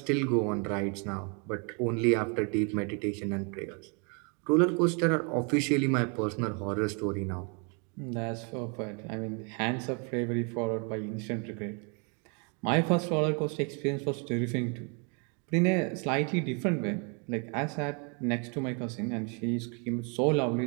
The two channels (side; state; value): left; quieter; 36.0 dB